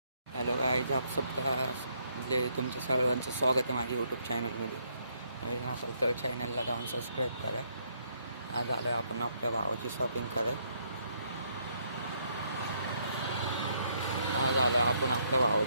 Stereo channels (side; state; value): both; inverted; correlation -0.71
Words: हॅलो गाईज, आप सबका तुमच्या सर्वांचं स्वागत आहे माझ्या यूट्यूब चॅनलमध्ये. नवीन असेल तर चॅनलला जाऊन सबस्क्राईब करा. आज आलो आपण आपल्या भावाची शॉपिंग कराय. आज आलो आपण आपल्या